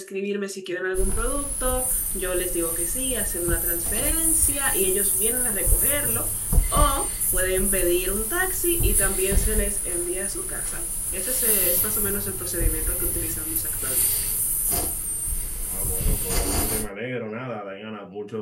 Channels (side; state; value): both; identical; correlation 1.00